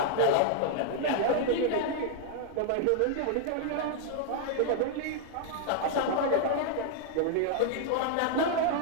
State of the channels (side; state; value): both; different; correlation 0.00